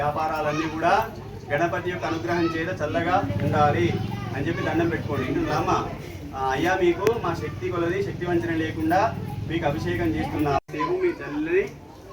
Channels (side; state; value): both; identical; correlation 1.00